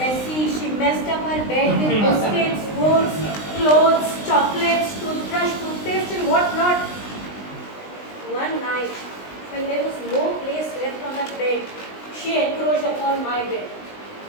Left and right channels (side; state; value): right; late; 19 ms